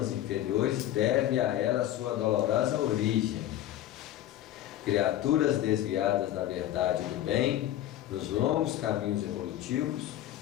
inferiores deve a ela a sua dolorosa origem. criaturas desviadas da verdade e do bem, nos longos caminhos evolutivos,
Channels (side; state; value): right; quieter; 12.9 dB